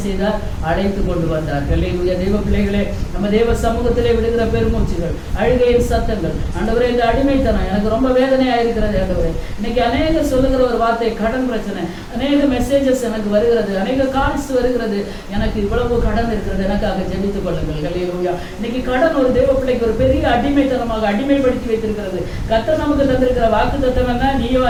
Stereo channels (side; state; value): both; identical; correlation 1.00